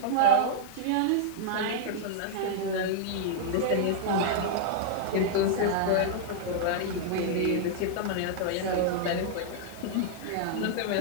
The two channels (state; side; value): different; both; correlation -0.01